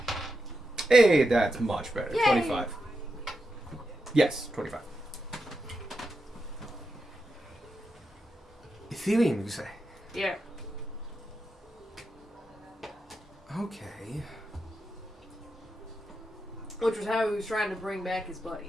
Hey, that's much better. Yay. 25. Yes, 25. Ethereum, you say? Yeah. Okay. Which was how he was trying to bring back his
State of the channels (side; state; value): both; normal; correlation 0.87